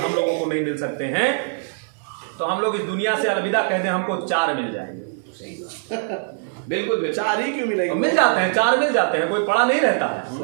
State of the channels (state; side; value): silent; left; 64 dB below the other